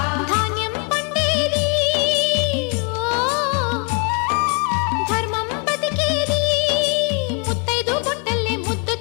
ధాన్యం పండేది ధర్మం బతికేది ముత్తైదు బొట్టల్లే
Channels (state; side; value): quieter; right; 35.0 dB